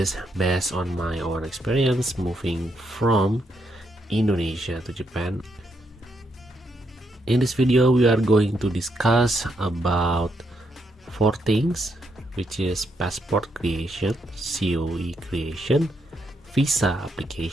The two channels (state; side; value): normal; both; correlation 0.79